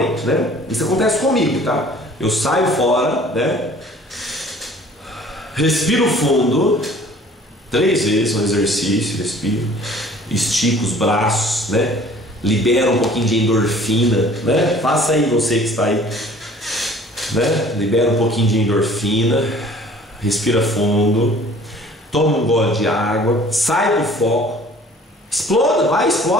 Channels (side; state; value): both; normal; correlation 0.51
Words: né? Isso acontece comigo, tá? Eu saio fora, né? Respiro fundo 3 vezes no exercício, respiro, estico os braços, né? Libera um pouquinho de endorfina, né? Faça aí, você que está aí, né? Libera um pouquinho de endorfina, respira fundo, toma um gole de água, sai do foco,